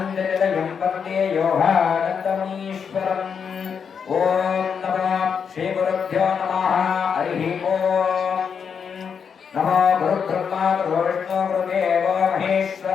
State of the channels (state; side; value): quieter; right; 6.7 dB